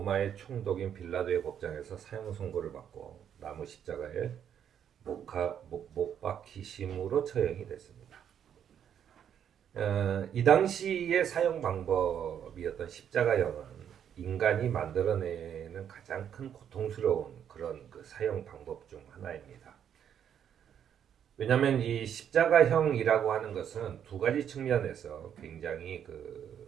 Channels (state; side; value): quieter; left; 9.0 dB